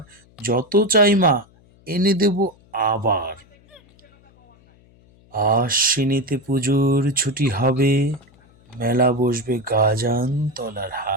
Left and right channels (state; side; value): noise; left; hum, 29 dB below the sound